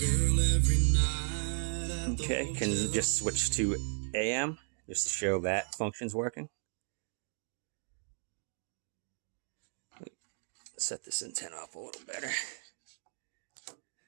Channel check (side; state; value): left; silent; 55 dB below the other